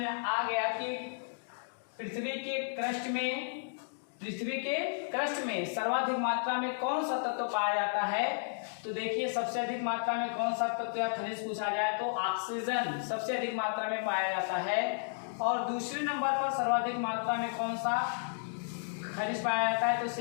आ गया कि पृथ्वी के क्रस्ट में सर्वाधिक मात्रा में कौन सा तत्व पाया जाता है। तो देखिए सबसे अधिक मात्रा में कौन सा तत्व या खनिज पूछा जाए तो ऑक्सीजन सबसे अधिक मात्रा में पाया जाता है। और दूसरे नंबर पर सर्वाधिक मात्रा में कौन सा खनिज पाया जाता है तो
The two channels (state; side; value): silent; right; digital silence